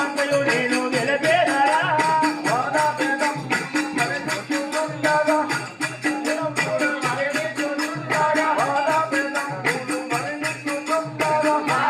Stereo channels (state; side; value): identical; both; correlation 1.00